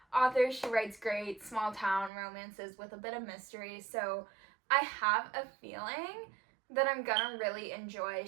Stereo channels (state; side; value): drops out; left; at 2.1 s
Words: authors. She writes great small town romances with a bit of mystery. So I have a feeling that I'm gonna really enjoy